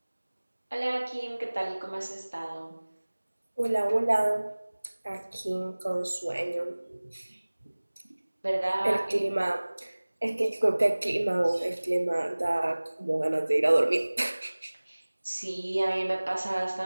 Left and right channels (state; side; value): inverted; both; correlation -1.00